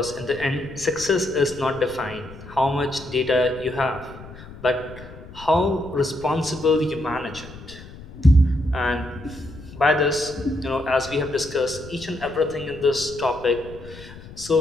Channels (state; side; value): noise; left; rumble, 16 dB below the sound